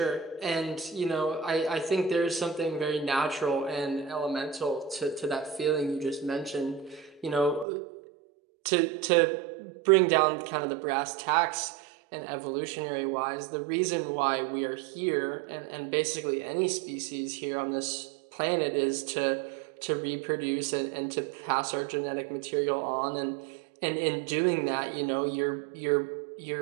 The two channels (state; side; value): drops out; left; at 7.7 s